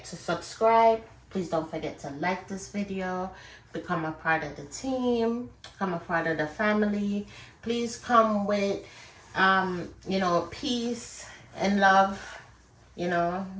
to subscribe. Please don't forget to like this video, become a part of the team, become a part of the family. Please come with, you know, peace and love, you know,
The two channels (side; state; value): both; identical; correlation 1.00